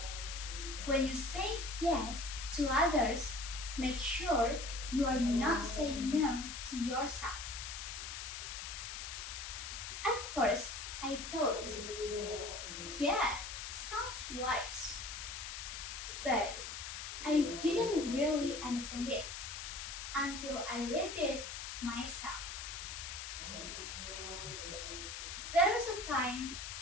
when you say yes to others, make sure you are not saying no to yourself. At first, I thought, yeah, sounds wise. But I didn't really understand it until I lived it myself. There was a time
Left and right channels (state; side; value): noise; left; hiss, 7 dB below the sound